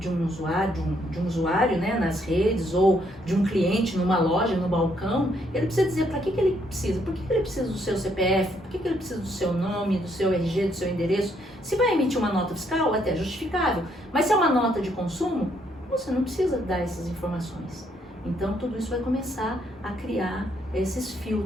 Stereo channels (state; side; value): normal; both; correlation 0.71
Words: um usuário, né, nas redes, ou de um cliente numa loja, no balcão, ele precisa dizer para que ele precisa. Por que ele precisa do seu CPF? Por que ele precisa do seu nome, do seu RG, do seu endereço? Se vai emitir uma nota fiscal, é até justificável. Mas se é uma nota de consumo, você não precisa dar essas informações. Então, tudo isso vai começar a criar esses